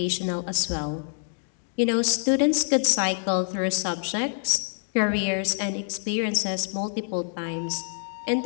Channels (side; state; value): right; silent; digital silence